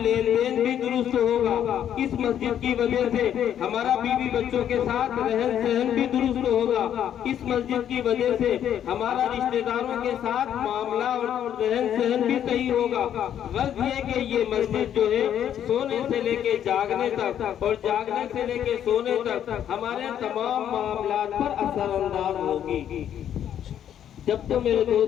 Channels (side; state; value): right; quieter; 9.9 dB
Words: لین دین بھی درست ہوگا، اس مسجد کی وجہ سے ہمارا بیوی بچوں کے ساتھ رہن سہن بھی درست ہوگا، اس مسجد کی وجہ سے ہمارا رشتہ داروں کے ساتھ معاملہ اور رہن سہن بھی صحیح ہوگا۔ غرض یہ کہ یہ مسجد جو ہے سونے سے لے کے جاگنے تک اور جاگنے سے لے کے سونے تک ہمارے تمام معاملات پر اثر انداز ہوگی۔ جب تو میرے